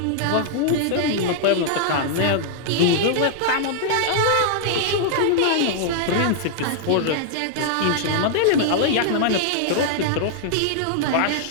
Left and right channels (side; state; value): both; different; correlation -0.01